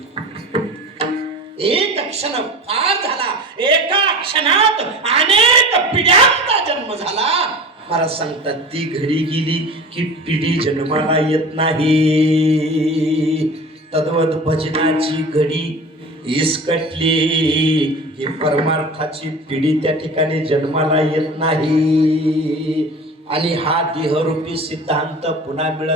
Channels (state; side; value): normal; both; correlation 0.36